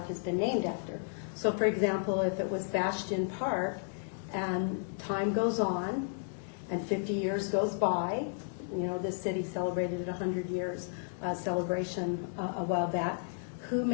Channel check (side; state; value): right; silent; digital silence